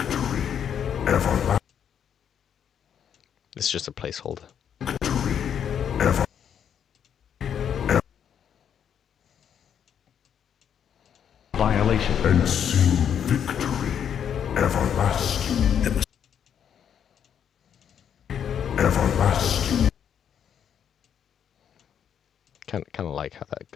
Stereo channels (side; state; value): right; quieter; 8.6 dB